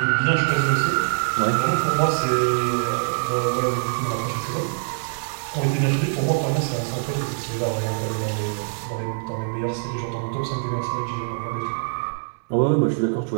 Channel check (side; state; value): left; silent; 60 dB below the other